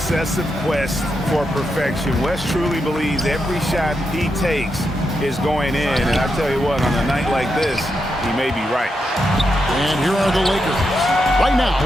quest for perfection. West truly believes every shot he takes is going in. And I tell you what, on a night like this, he may be right. And here are the Lakers. Right now,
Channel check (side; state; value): both; normal; correlation 0.85